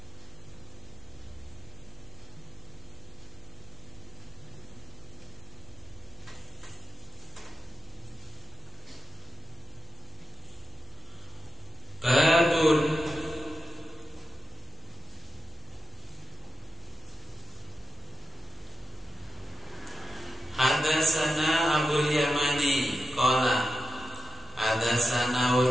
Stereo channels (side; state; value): both; normal; correlation 0.91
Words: hadasana Abul Yamani qala hadasana